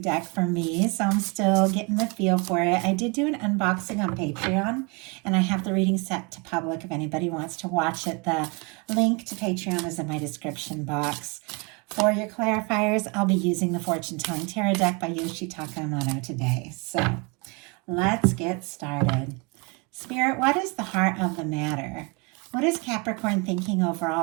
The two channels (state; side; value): quieter; left; 30.6 dB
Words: for me, so I'm still getting the feel for it. I did do an unboxing on Patreon, and I have the reading set to public if anybody wants to watch it. The link to Patreon is in my description box. For your clarifiers, I'll be using the Fortune Telling Tarot deck by Yoshitaka Amano today. So let's get started. Spirit, what is the heart of the matter? What is Capricorn thinking